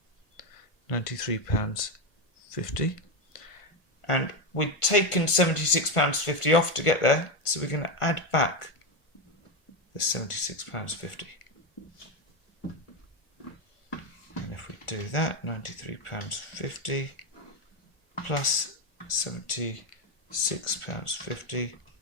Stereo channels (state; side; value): late; right; 1.4 ms